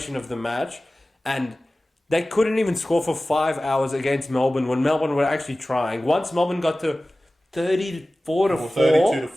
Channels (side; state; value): both; normal; correlation 0.97